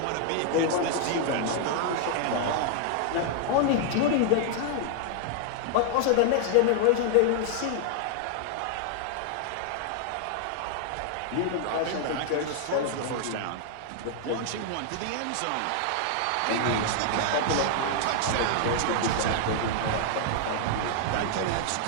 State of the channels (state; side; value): different; both; correlation 0.00